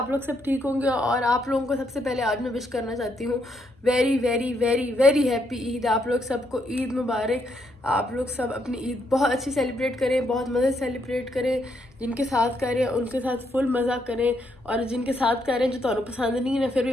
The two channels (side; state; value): both; normal; correlation 0.76